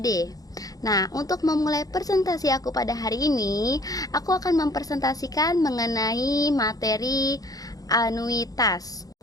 Nah, untuk memulai presentasi aku pada hari ini, aku akan mempresentasikan mengenai materi anuitas.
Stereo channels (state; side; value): late; right; 0.18 ms